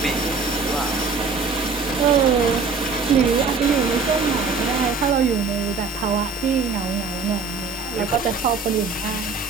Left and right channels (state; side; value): quieter; left; 4.6 dB